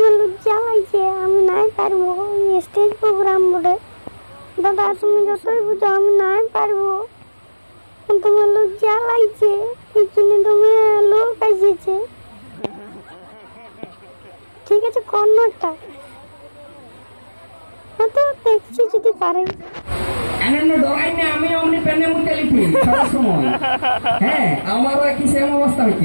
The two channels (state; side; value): inverted; both; correlation -1.00